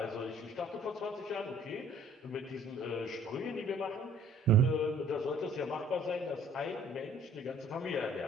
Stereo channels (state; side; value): normal; both; correlation 0.56